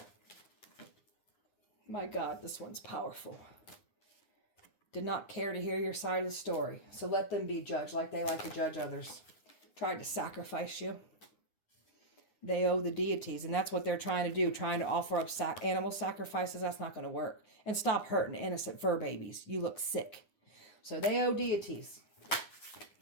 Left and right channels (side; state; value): right; late; 9.8 ms